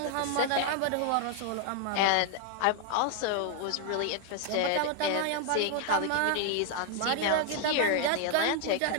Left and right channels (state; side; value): different; both; correlation 0.00